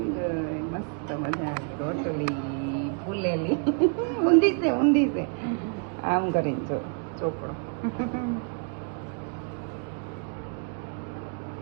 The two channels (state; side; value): quieter; left; 38.3 dB